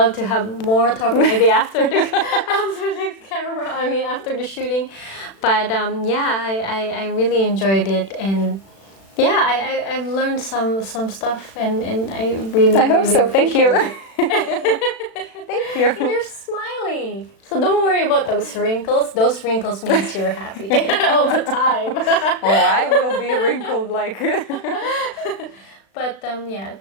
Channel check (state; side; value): late; right; 36 ms